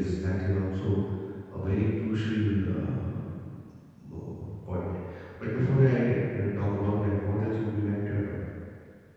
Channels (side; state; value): both; identical; correlation 1.00